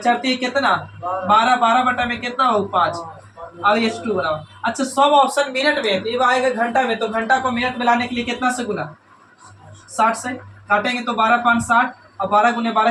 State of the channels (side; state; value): both; identical; correlation 1.00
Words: कितना 12 बटा में कितना हो 5, और S2 बराबर, अच्छा सब ऑप्शन मिनट में, तो ये आएगा घंटा में, तो घंटा को मिनट में लाने के लिए कितना से गुना 60 से काटेंगे तो 12 5 60, और 12 गुने